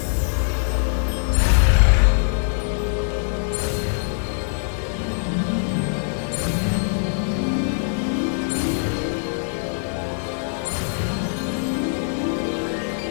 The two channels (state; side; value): silent; right; 64 dB below the other